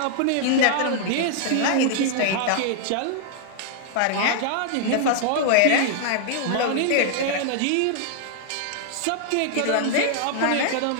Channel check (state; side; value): different; both; correlation -0.01